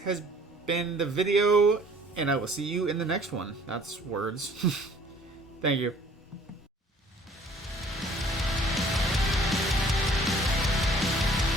been the video, and I will see you in the next one. That's words. Thank you.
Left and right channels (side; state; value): both; normal; correlation 0.54